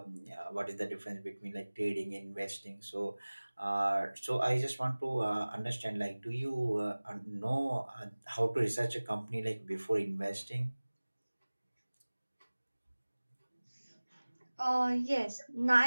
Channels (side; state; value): both; inverted; correlation -1.00